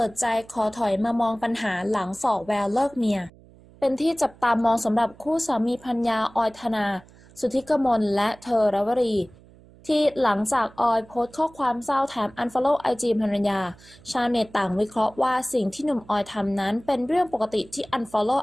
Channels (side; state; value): right; noise; hum, 25 dB below the sound